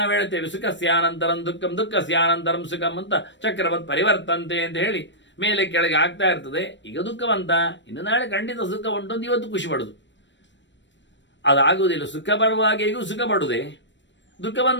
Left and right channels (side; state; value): right; late; 0.53 ms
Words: ಹೇಳ್ತೇವೆ ಸುಖಸ್ಯಾನಂತರಂ ದುಃಖಂ ದುಃಖಸ್ಯಾನಂತರಂ ಸುಖಂ ಅಂತ ಚಕ್ರವತ್ ಪರಿವರ್ತಂತೆ ಅಂತ ಹೇಳಿ ಮೇಲೆ ಕೆಳಗೆ ಆಗ್ತಾ ಇರ್ತದೆ. ಈಗ ದುಃಖವಂತ, ಇನ್ನು ನಾಳೆ ಖಂಡಿತ ಸುಖ ಉಂಟು ಅಂತ ಇವತ್ತು ಖುಷಿ ಪಡುದು, ಅದಾಗುವುದಿಲ್ಲ. ಸುಖ ಬರುವಾಗ ಈಗ ಸುಖ ಪಡುವುದೇ, ದುಃಖ